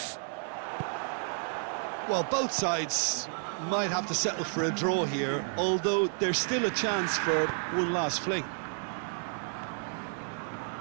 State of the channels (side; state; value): left; silent; 57 dB below the other